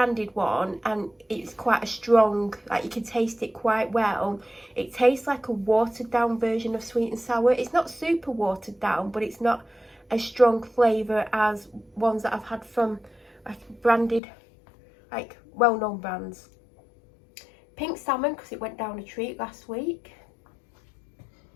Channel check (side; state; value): right; drops out; at 14.2 s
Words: one and it's quite a strong, like you can taste it quite well. It tastes like a watered down version of sweet and sour. It's not super watered down, but it's not a strong flavour as ones that I've had from like branded, like well-known brands. Pink salmon because it went down a treat last week.